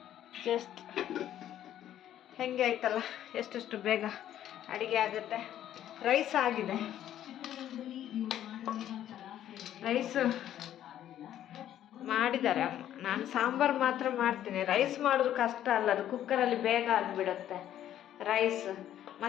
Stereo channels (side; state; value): right; quieter; 11.5 dB